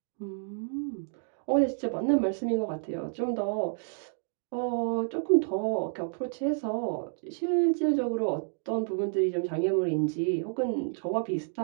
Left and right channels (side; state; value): left; silent; digital silence